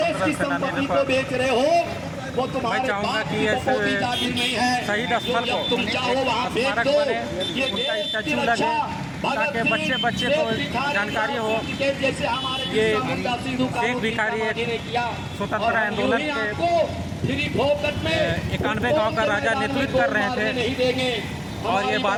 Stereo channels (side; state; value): both; identical; correlation 1.00